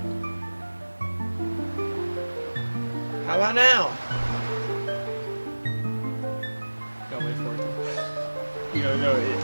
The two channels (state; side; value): inverted; both; correlation -1.00